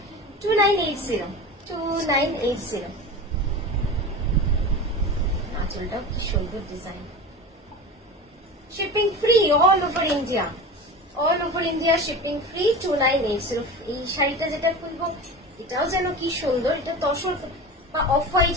2980, 2980। আঁচলটাও কি সুন্দর design. Shipping free all over India, all over India shipping free. 2980। এই শাড়িটা যেটা খুলবো এটাও যেন কি সুন্দর। এটা তসর বা অফ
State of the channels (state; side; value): normal; both; correlation 0.30